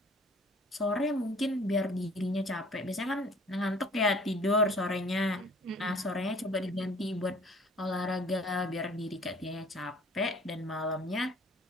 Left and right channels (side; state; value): both; normal; correlation 0.51